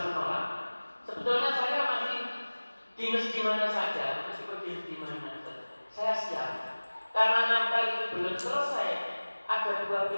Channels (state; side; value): inverted; both; correlation -1.00